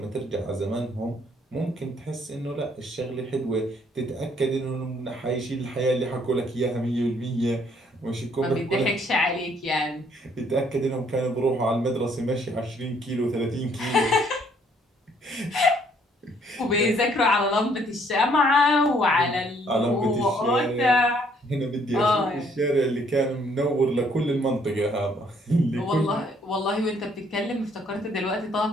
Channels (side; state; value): both; normal; correlation 0.65